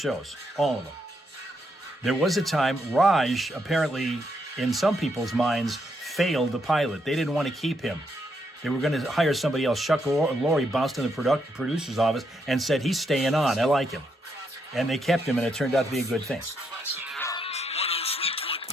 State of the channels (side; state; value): both; normal; correlation 0.78